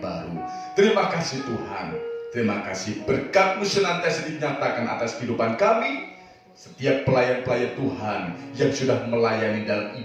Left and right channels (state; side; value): identical; both; correlation 1.00